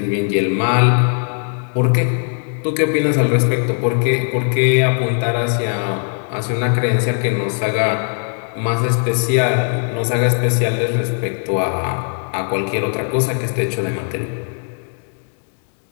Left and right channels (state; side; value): silent; right; 55 dB below the other